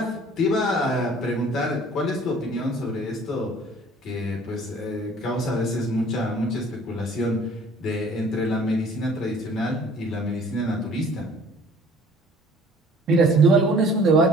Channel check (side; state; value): both; normal; correlation 0.52